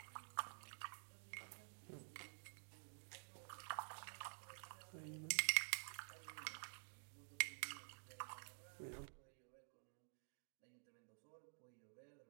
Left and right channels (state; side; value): silent; left; digital silence